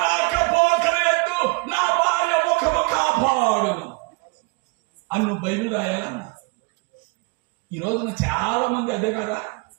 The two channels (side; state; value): left; quieter; 28.0 dB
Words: రాకపోకల యందు నా భార్య ముఖము కాపాడు అని నువ్వు బైబిల్ రాయాలన్నా. ఈ రోజున చాలా మంది అదే కదా.